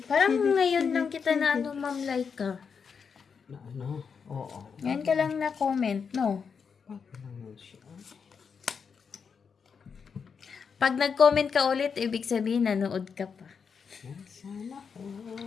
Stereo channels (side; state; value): right; quieter; 6.1 dB